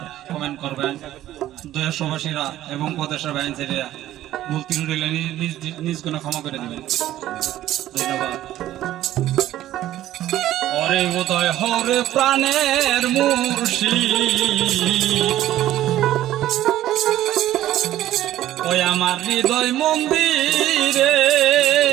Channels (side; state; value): left; quieter; 13.6 dB